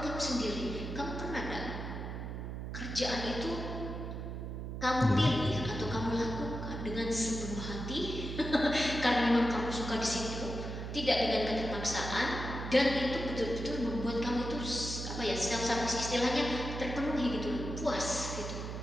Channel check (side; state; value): right; noise; hum, 6 dB below the sound